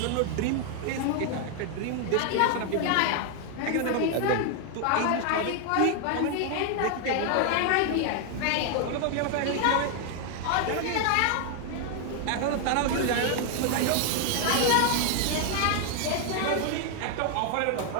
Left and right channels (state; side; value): different; both; correlation 0.00